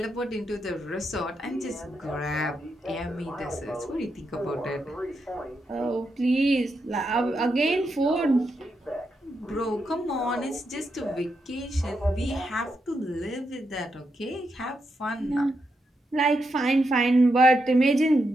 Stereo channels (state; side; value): normal; both; correlation 0.84